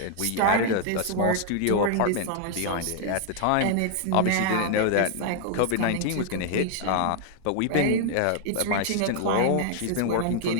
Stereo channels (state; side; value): different; both; correlation 0.00